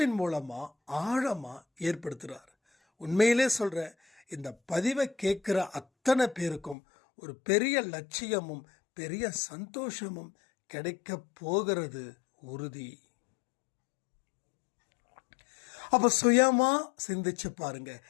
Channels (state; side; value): drops out; right; at 6.8 s